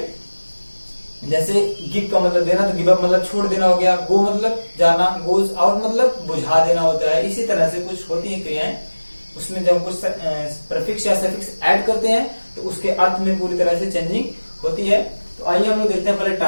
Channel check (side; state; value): both; inverted; correlation -1.00